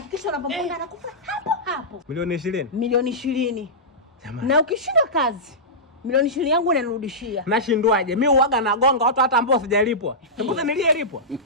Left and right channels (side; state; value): both; normal; correlation -0.14